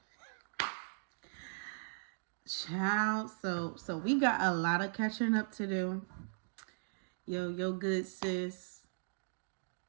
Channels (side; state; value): left; silent; digital silence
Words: Child. So we got a lot of catching up to do. Yo, good sis